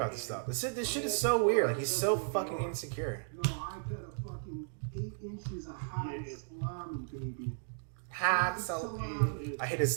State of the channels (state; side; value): silent; left; digital silence